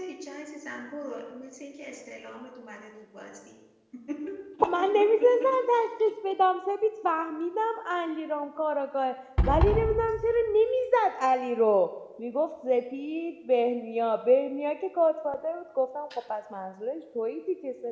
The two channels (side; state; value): both; identical; correlation 1.00